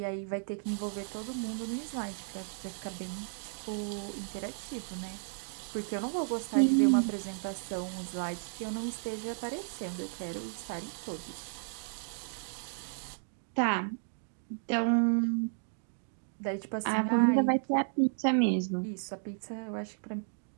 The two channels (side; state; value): left; silent; digital silence